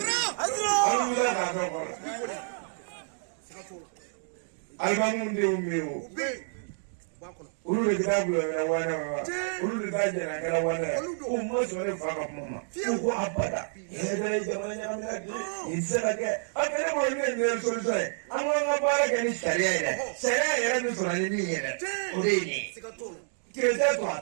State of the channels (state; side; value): silent; left; digital silence